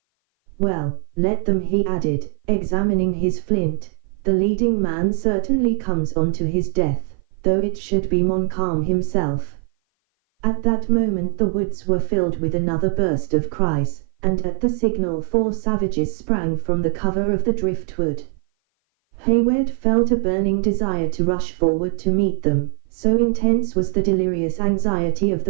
Well, let them," he added, examining his flint. "The leading man certainly comes on to his death, though it should be Montcalm himself." At that moment the woods were filled with another burst of cries, and at the signal 4 savages sprang from the cover of the driftwood. Hayward felt a burning desire to rush forward to meet them, so intense was the delirious anxiety of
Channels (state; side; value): silent; left; 56 dB below the other